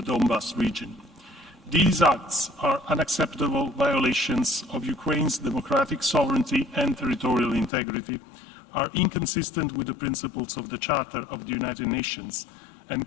Donbas region. These acts are unacceptable violations of Ukraine's democratic sovereignty and territorial integrity, are inconsistent with the principles of the Charter of the United Nations,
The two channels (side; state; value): right; drops out; at 7.7 s